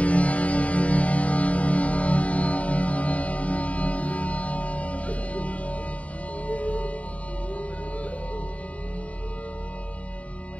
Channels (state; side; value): late; right; 0.066 ms